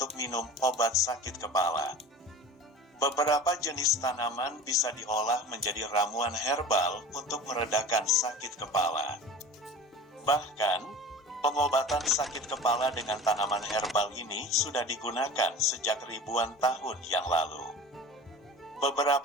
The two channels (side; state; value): both; normal; correlation 0.37